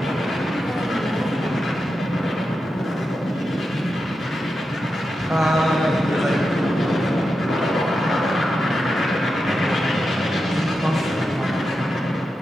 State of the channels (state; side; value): normal; both; correlation 0.89